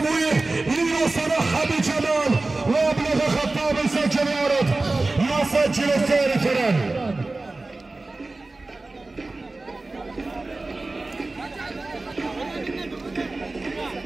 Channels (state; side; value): quieter; left; 3.2 dB